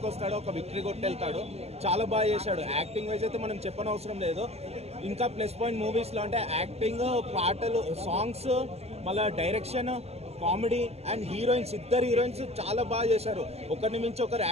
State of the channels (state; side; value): late; left; 0.30 ms